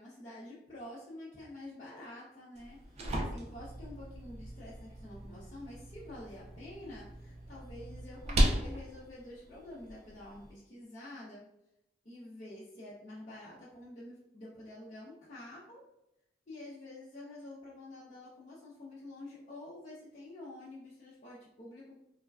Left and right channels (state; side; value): normal; both; correlation 0.81